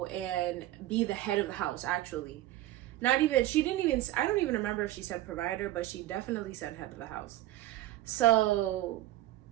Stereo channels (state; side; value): quieter; left; 15.1 dB